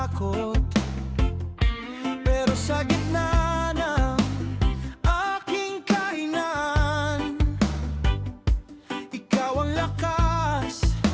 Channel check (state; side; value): identical; both; correlation 1.00